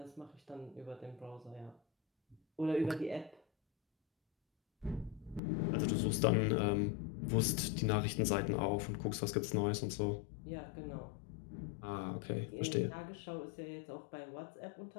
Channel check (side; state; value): right; drops out; at 5.4 s